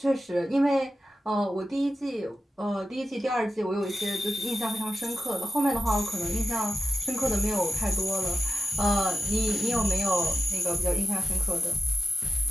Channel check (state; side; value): normal; both; correlation 0.91